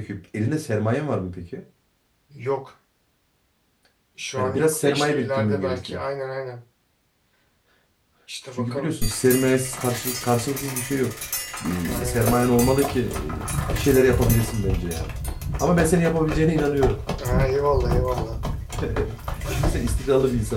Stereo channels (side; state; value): both; identical; correlation 1.00